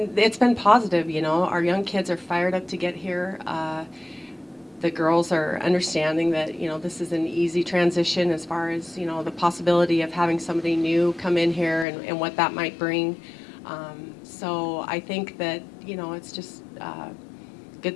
been positive, Our young kids are fired up to get here. The girls are understanding that, this is an easy transition as far as, the possibility of having somebody new come in here and what that might bring. So I think that, it's just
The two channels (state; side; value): drops out; right; at 11.9 s